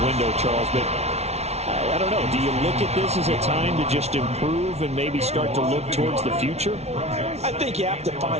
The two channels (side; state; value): left; late; 0.31 ms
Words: window, Charles. But I don't know. Do you look at this as a time to just improve and maybe start to look towards the future? I think you have to